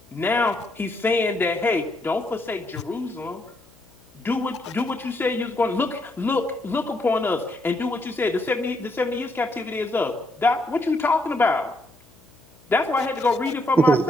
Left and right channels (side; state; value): left; noise; hum, 29 dB below the sound